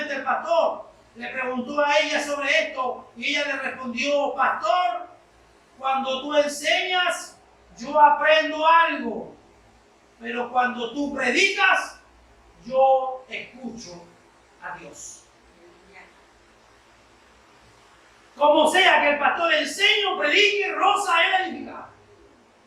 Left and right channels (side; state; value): both; identical; correlation 1.00